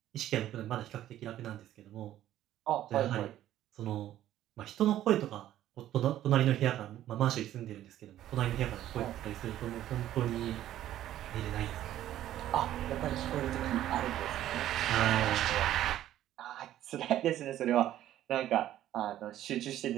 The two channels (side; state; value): left; quieter; 12.7 dB